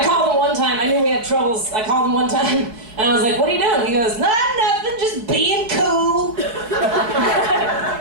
called him one time. I knew we had troubles. I called him one time, and I was like, what are you doing? He goes, nothing, just being cool.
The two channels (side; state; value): left; late; 4.6 ms